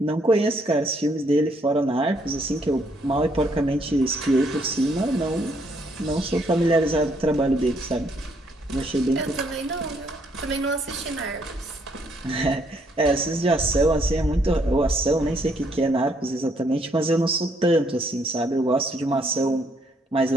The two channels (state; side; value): normal; both; correlation 0.70